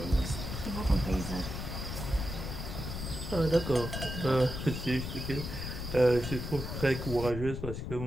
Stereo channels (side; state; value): left; noise; rumble, 5 dB below the sound